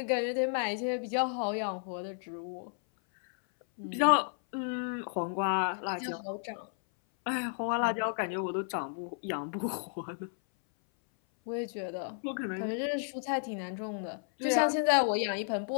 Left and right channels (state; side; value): silent; right; 56 dB below the other